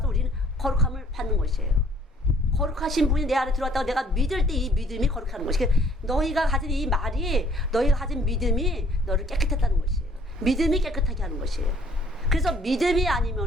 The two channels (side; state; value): both; normal; correlation 0.60